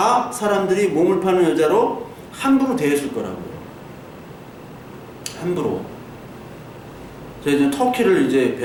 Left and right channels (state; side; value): identical; both; correlation 1.00